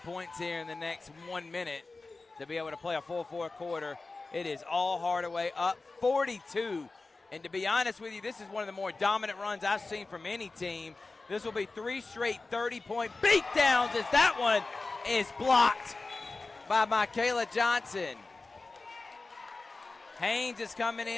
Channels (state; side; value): quieter; right; 3.6 dB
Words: here in the next 1 minute to be able to play a full fourth quarter. It is all Hardaway up 42. And to be honest with you, this is one of the more dominant runs I've seen from any team. This will be 3 straight 30-point beatdowns as that one is blocked by Michaela Johnson. Haynes is coming